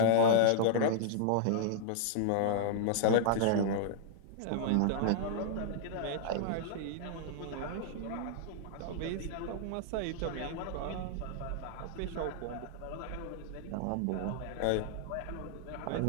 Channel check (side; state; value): both; different; correlation -0.01